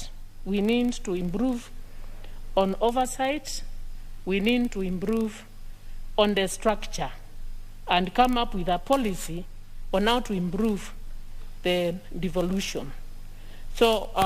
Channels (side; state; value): both; identical; correlation 1.00